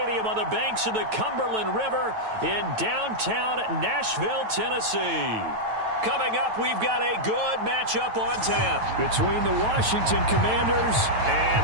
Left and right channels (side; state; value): left; late; 9.2 ms